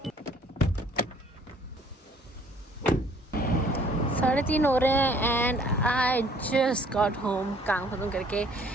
3:30 हो रहे हैं and I just got home, काम खत्म करके।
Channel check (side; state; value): both; normal; correlation 0.58